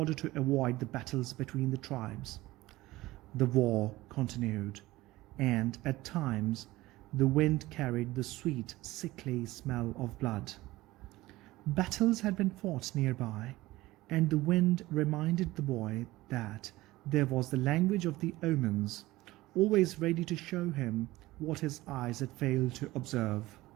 to avoid the battles between the tribes. The war continued, and at times the wind carried the sweet, sickly smell of blood. Battles had been fought nearby, and the wind reminded the boy that there was the language of the omens, always ready to show him what his eyes had failed to observe.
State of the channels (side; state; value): left; quieter; 18.4 dB